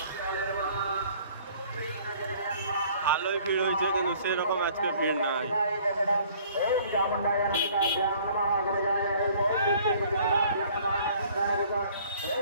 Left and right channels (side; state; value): both; inverted; correlation -0.55